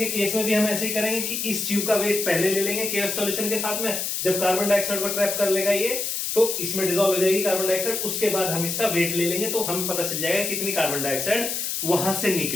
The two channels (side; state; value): left; noise; hiss, 2 dB below the sound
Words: केस में भी हम ऐसे ही करेंगे कि इस ट्यूब का वेट पहले ले लेंगे KOH सॉल्यूशन के साथ में, जब कार्बन डाइऑक्साइड को ट्रैप कर लेगा ये, तो इसमें डिसॉल्व हो जाएगी कार्बन डाइऑक्साइड, उसके बाद हम इसका वेट ले लेंगे, तो हमें पता चल जाएगा कितनी कार्बन डाइऑक्साइड वहां से